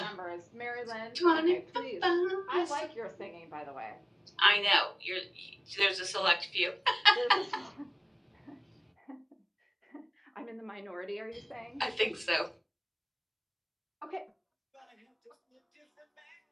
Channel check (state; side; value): identical; both; correlation 1.00